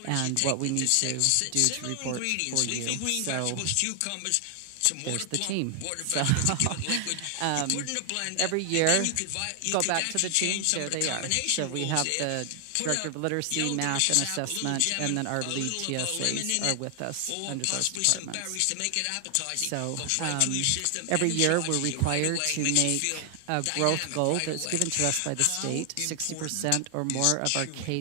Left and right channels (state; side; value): different; both; correlation 0.00